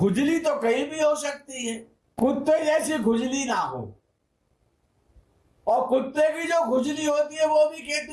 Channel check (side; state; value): both; identical; correlation 1.00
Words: तो कहीं भी हो सकती है, कुत्ते जैसी खुजली ना हो, और कुत्ते की जो खुजली होती है वो भी